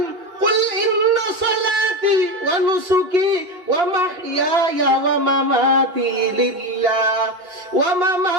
কুল ইন্না সালাতি ওয়া নুসুকি ওয়া মাহইয়ায়া ওয়া মামাতি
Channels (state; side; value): late; left; 2.8 ms